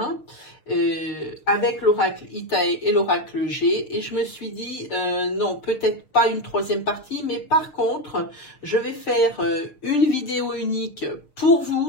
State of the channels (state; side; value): late; right; 6.5 ms